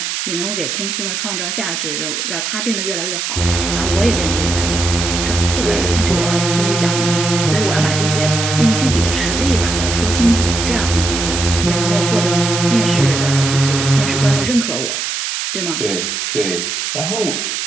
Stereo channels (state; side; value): noise; right; hiss, 3 dB below the sound